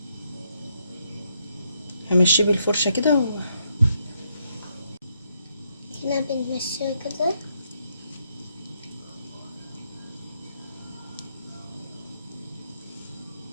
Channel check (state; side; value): inverted; both; correlation -0.76